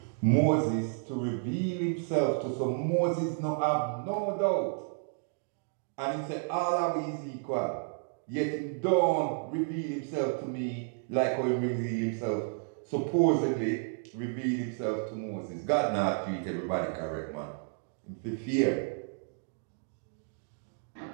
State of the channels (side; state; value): left; silent; 57 dB below the other